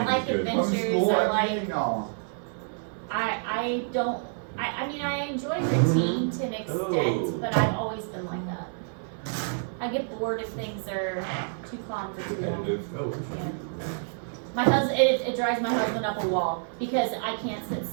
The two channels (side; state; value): left; silent; 59 dB below the other